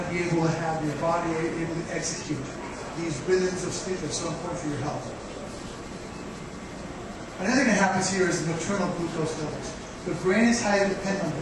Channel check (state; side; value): identical; both; correlation 1.00